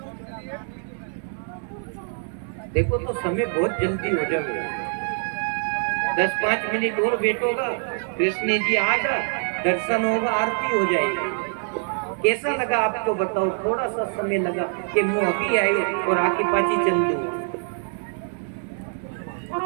देखो तो समय बहुत जल्दी हो जाएगा, 10-5 मिनट और बैठोगा, कृष्ण जी आगा, दर्शन होगा, आरती हो जाएगी। कैसा लगा आपको बताओ? थोड़ा सा समय लगा कि मैं अभी आई और आके पाची चल दूँ।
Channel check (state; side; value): silent; left; 62 dB below the other